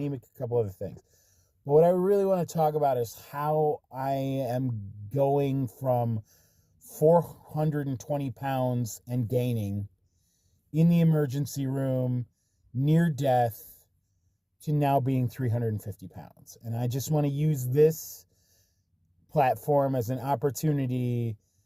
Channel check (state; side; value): identical; both; correlation 1.00